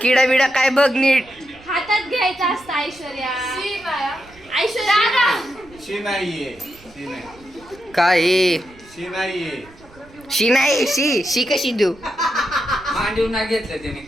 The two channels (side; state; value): right; noise; rumble, 25 dB below the sound